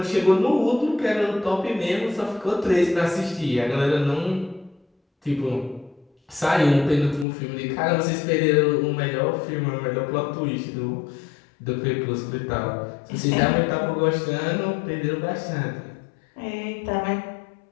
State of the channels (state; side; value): drops out; right; at 7.2 s